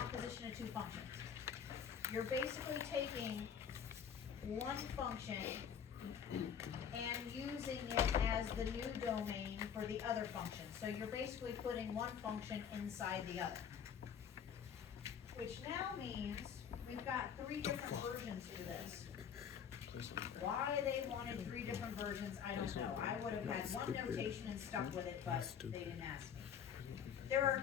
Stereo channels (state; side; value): quieter; right; 7.8 dB